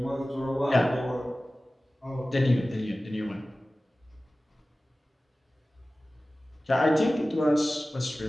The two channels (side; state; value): both; normal; correlation 0.97